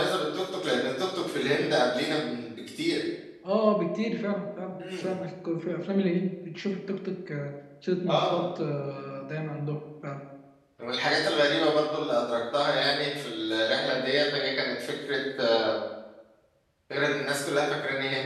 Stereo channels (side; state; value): both; identical; correlation 1.00